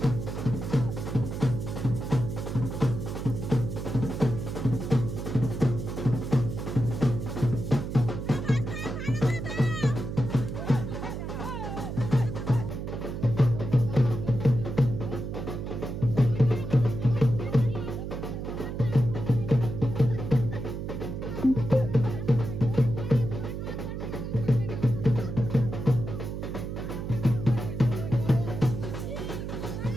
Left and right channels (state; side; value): noise; right; hum, 5 dB below the sound